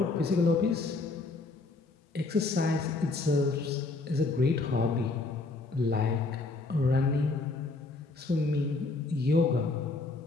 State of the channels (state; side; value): quieter; right; 3.6 dB